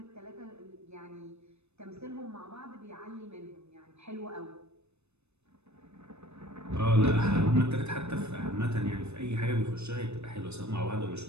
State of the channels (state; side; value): late; left; 0.81 ms